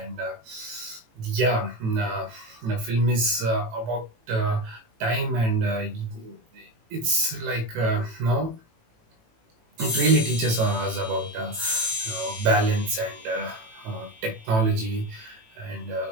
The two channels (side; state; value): left; late; 18 ms